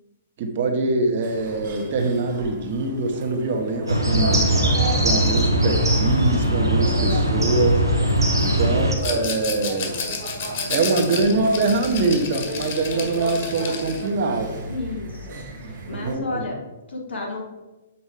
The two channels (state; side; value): inverted; both; correlation -0.47